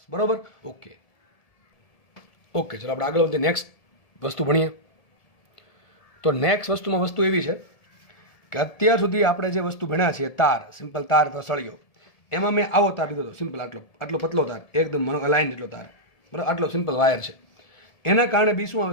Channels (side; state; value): right; late; 1.7 ms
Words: બરાબર. ઓકે ચલો આપણે આગળ વધીએ, નેક્સ્ટ વસ્તુ ભણીએ. તો નેક્સ્ટ વસ્તુમાં વસ્તુ એવી છે કે અત્યાર સુધી આપણે જે વસ્તુ ભણ્યા છે તાર, સિમ્પલ તાર અથવા સળિયો, એમાં મેં આવો તાર લીધો હતો, સિમ્પલ આટલો પતલો તાર, એકદમ લાઈન જેટલો તાર, બરાબર, આટલો સિમ્પલ વાયર છે. એના કારણે બી શું